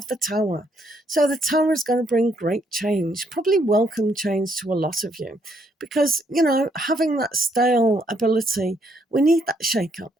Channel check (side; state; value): both; normal; correlation 0.71